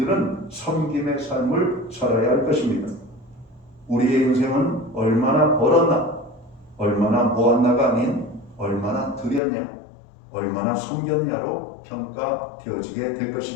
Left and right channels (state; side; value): drops out; right; at 9.4 s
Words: 섬김의 삶을 살아야 할 것입니다. 우리의 인생은 얼마나 벌었나, 얼마나 모았나가 아닌 얼마나 드렸냐, 얼마나 섬겼냐로 평가되어지게 될